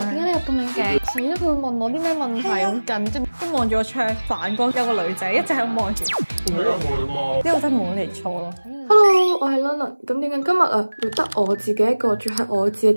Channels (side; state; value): both; inverted; correlation -1.00